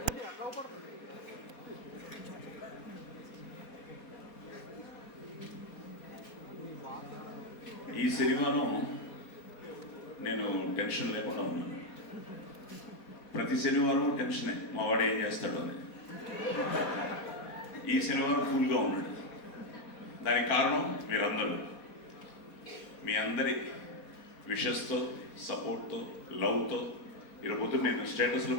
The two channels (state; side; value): late; right; 4.2 ms